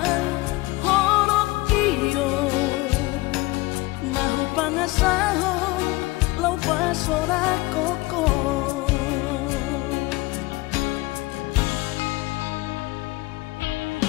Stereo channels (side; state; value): right; quieter; 21.3 dB